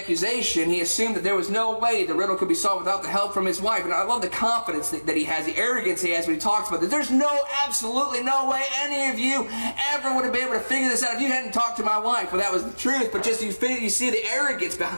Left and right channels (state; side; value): inverted; both; correlation -1.00